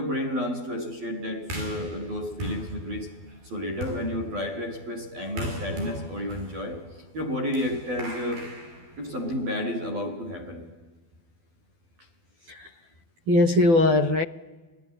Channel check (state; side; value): late; left; 12 ms